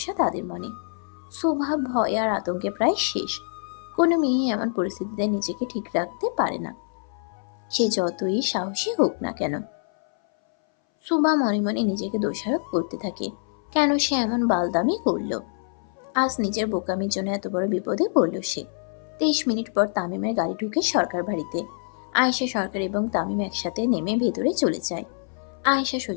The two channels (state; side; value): silent; right; 60 dB below the other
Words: তাদের মনে। সুভা ভয় আর আতঙ্কে প্রায় শেষ। কোনো মেয়ে এমন পরিস্থিতিতে নিজেকে ঠিক রাখতে পারে না, সে যতই সাহসী হোক না কেন। সুভা মনে মনে নিজেকে দোষারোপ করতে থাকে, কেন সে এমন বালদামি করলো। আজ নিজের বোকামির জন্য এত বড় বিপদে পড়ল সে। 23 মিনিট পর তামিমের গাড়ি ঢুকে সরকার বাড়িতে। আয়েশা সরকার এবং তামিম একসাথে নেমে ভেতরে চলে যায়। আয়েশা